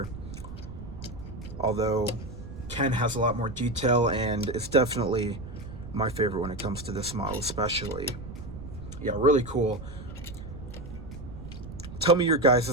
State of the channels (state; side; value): noise; right; rumble, 11 dB below the sound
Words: Although Ken has a lot more detail, and it's definitely my favorite when it comes to this model especially. Yeah, really cool. Tell me your